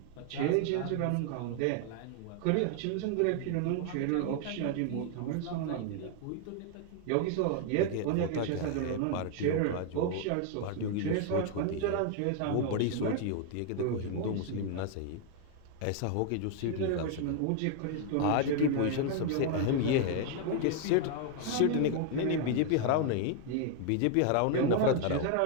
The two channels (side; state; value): both; different; correlation 0.00